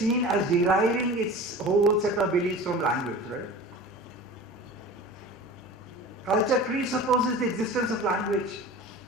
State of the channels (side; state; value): both; normal; correlation 0.37